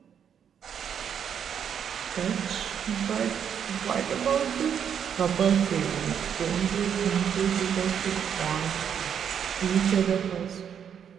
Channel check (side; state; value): left; quieter; 8.2 dB